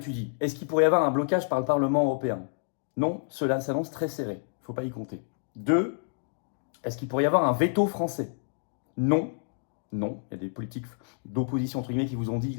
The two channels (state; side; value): silent; right; digital silence